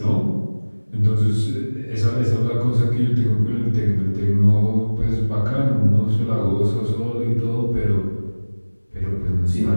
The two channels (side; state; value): both; inverted; correlation -1.00